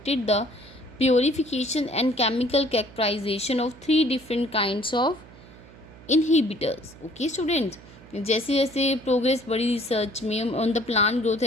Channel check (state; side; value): noise; right; hum, 21 dB below the sound